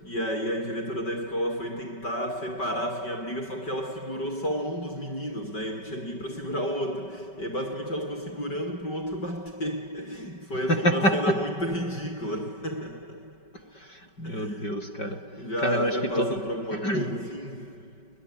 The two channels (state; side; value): late; right; 5.2 ms